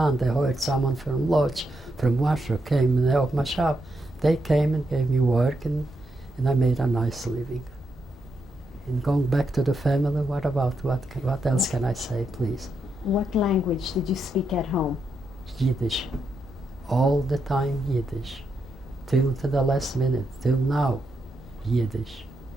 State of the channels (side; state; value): both; normal; correlation 0.82